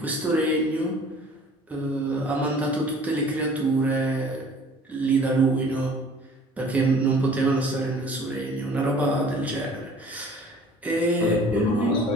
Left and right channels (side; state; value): both; normal; correlation 0.50